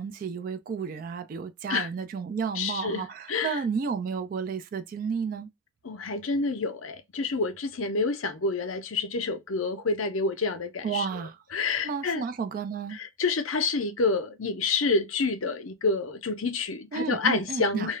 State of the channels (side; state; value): both; normal; correlation 0.03